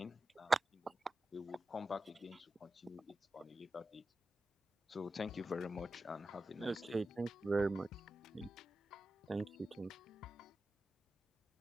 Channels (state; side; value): normal; both; correlation 0.92